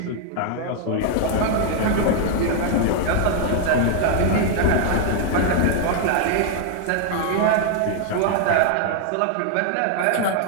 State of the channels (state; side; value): different; both; correlation 0.00